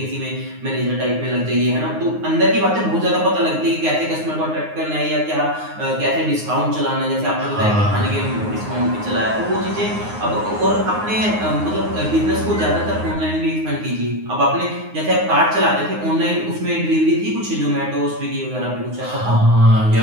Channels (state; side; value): late; left; 9.6 ms